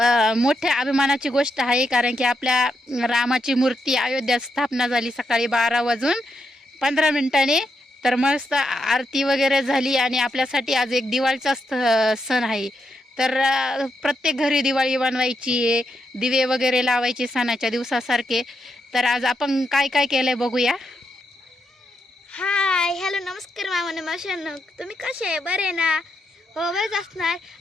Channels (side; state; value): both; normal; correlation 0.82